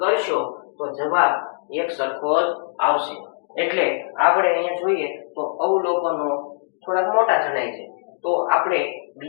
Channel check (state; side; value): silent; right; digital silence